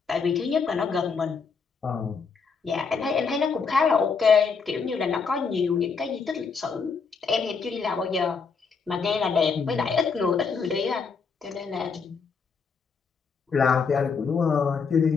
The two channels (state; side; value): quieter; right; 5.4 dB